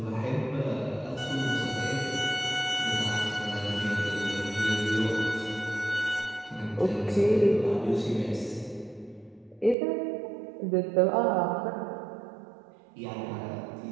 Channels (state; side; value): drops out; left; at 9.8 s